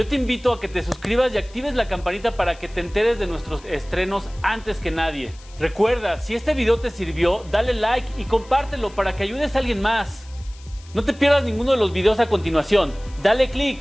te invito a que te suscribas y actives la campanita para que te enteres de nuestros estrenos antes que nadie. Recuerda, si este video te sirvió, dale like y compártelo para que ayudes a alguien más. No te pierdas ninguno de los videos a continuación. Dale click,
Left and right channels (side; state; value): left; noise; hiss, 24 dB below the sound